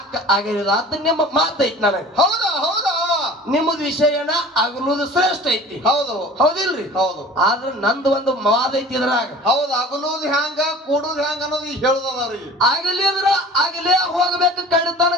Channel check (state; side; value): normal; both; correlation 0.43